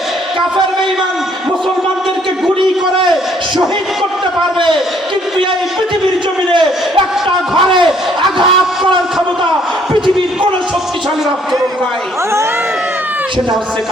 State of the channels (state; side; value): normal; both; correlation 0.64